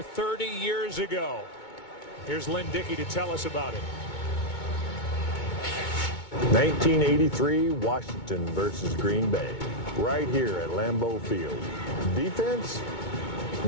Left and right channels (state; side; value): late; right; 2.2 ms